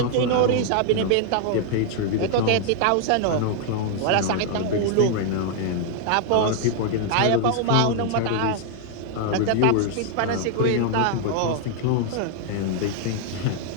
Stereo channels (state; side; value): different; both; correlation 0.00